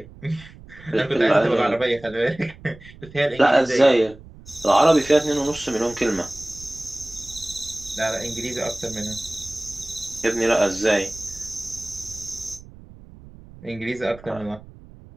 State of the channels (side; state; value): right; noise; rumble, 20 dB below the sound